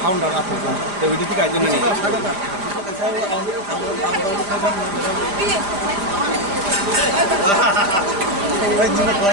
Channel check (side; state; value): left; late; 5.0 ms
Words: ফাউন্ডার আছে তো ওইটা থেকে আইজন্য নেই